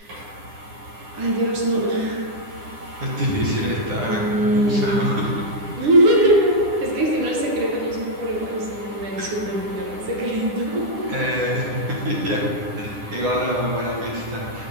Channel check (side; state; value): left; late; 9.9 ms